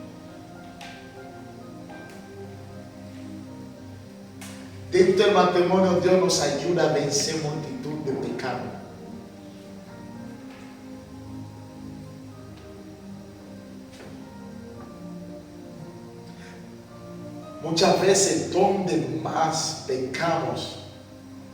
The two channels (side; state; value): both; identical; correlation 1.00